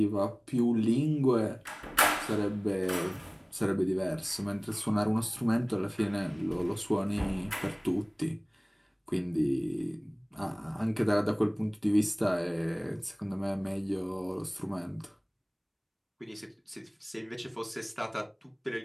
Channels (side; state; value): both; identical; correlation 1.00